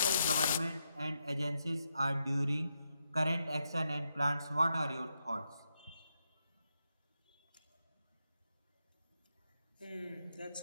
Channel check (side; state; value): both; inverted; correlation -0.83